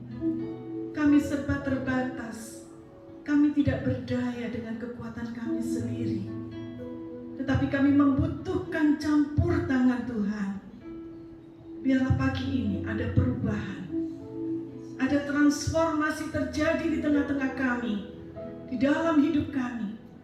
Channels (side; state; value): both; identical; correlation 1.00